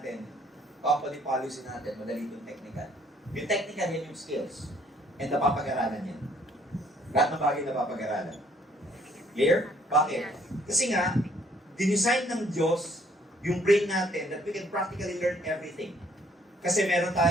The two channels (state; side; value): normal; both; correlation 0.62